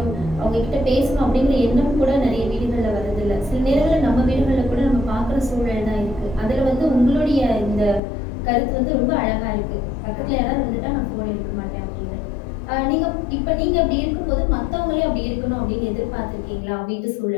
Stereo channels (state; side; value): drops out; right; at 8.0 s